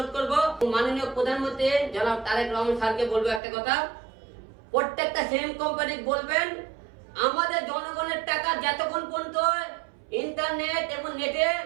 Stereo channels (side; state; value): left; drops out; at 3.4 s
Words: করব, মাননীয় প্রধানমন্ত্রী জনাব তারেক রহমান স্যারকে বলবো একটা কথা, প্রত্যেকটা সিম কোম্পানি বলবেন আমাদের জনগণের টাকা যতক্ষণ পর্যন্ত ইন্টারনেট এবং নেটে